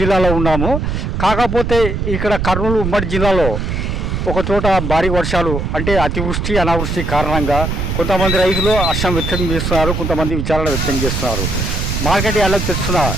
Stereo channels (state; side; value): noise; right; rumble, 2 dB below the sound